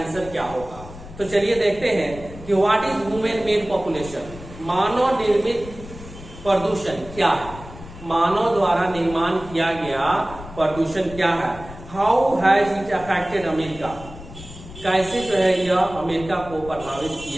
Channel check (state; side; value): noise; left; rumble, 15 dB below the sound